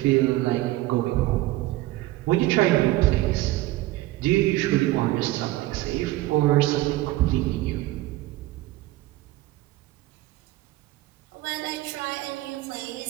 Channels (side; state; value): left; quieter; 17.4 dB